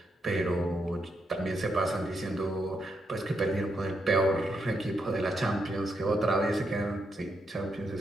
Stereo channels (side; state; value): both; normal; correlation 0.80